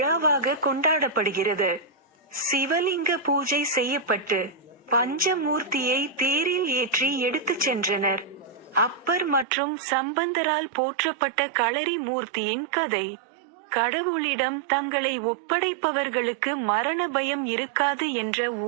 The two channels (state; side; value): drops out; left; at 9.5 s